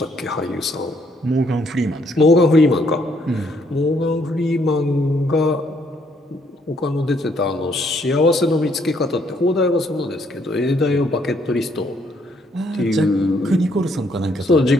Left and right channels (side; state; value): both; normal; correlation 0.69